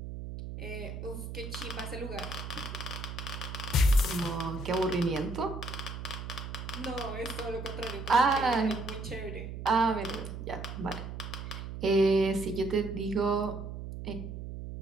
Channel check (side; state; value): right; noise; hum, 8 dB below the sound